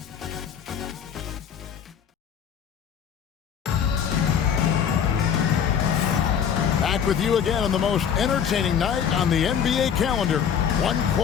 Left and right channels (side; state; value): right; quieter; 7.9 dB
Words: Back with you again on the most entertaining night on the NBA calendar. 1